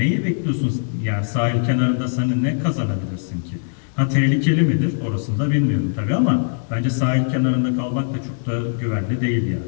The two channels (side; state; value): right; silent; digital silence